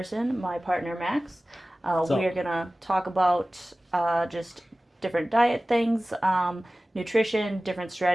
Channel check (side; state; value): both; normal; correlation 0.97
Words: my partner Max. We So, are going to talk about just different diet things, nutrition, different